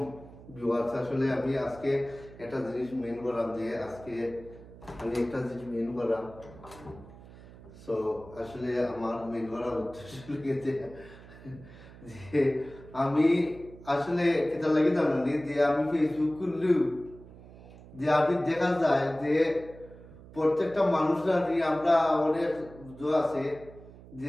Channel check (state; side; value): noise; right; hum, 19 dB below the sound